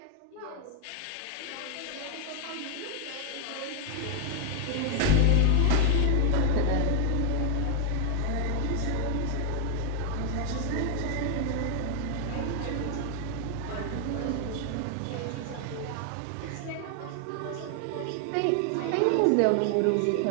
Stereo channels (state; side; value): different; both; correlation 0.00